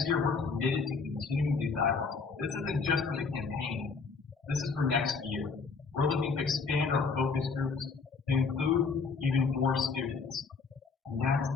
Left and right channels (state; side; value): quieter; right; 4.9 dB